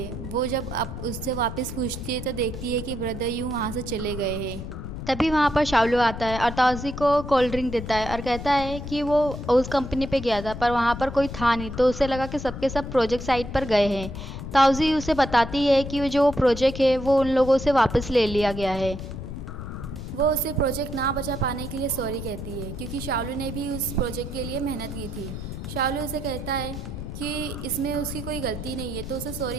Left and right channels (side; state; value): left; noise; rumble, 8 dB below the sound